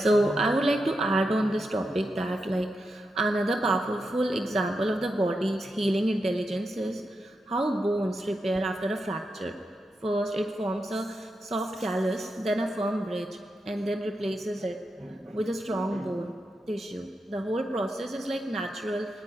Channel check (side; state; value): both; normal; correlation 0.87